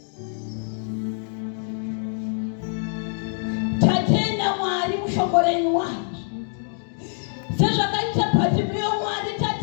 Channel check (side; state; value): right; silent; 62 dB below the other